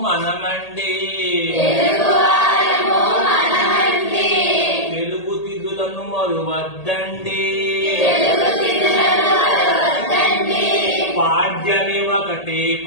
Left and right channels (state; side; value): late; right; 1.8 ms